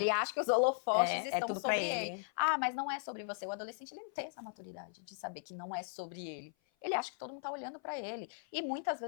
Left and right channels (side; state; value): right; silent; 53 dB below the other